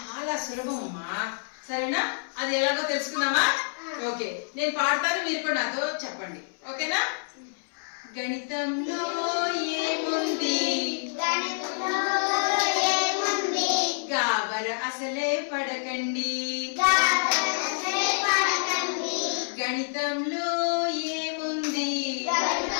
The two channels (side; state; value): right; silent; 60 dB below the other